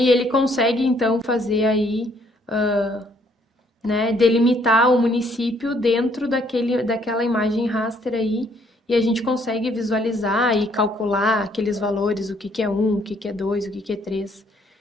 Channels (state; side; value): normal; both; correlation 0.66